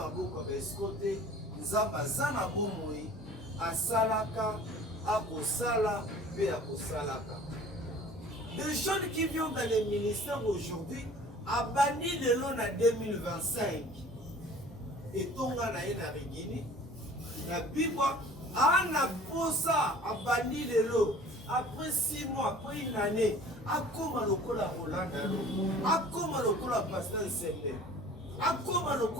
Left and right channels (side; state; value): both; normal; correlation 0.47